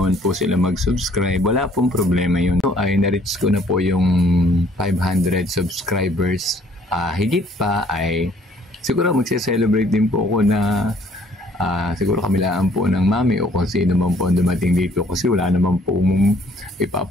po sila mag-subscribe. Wala pong problema yun. So, ay na-reach ko na po yung 500 subscribers. Higit pa ay siguro magse-celebrate din po ako na siguro kamilaan po ng mami o kung sino man po dumating dito kasi wala naman po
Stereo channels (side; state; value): both; normal; correlation 0.61